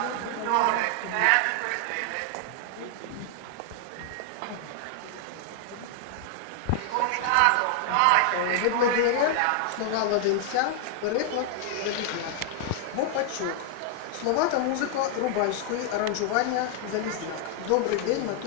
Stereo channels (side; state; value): both; different; correlation 0.00